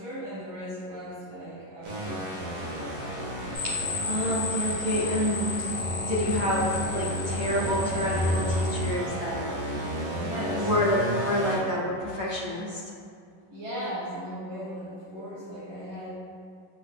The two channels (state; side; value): late; left; 11 ms